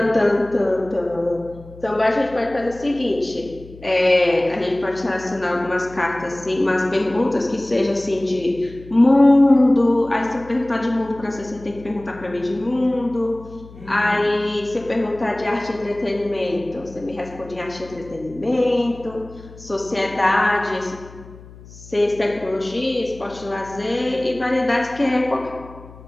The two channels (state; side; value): noise; left; hum, 19 dB below the sound